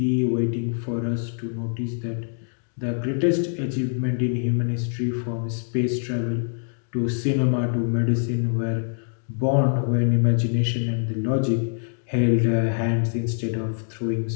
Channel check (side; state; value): right; silent; 62 dB below the other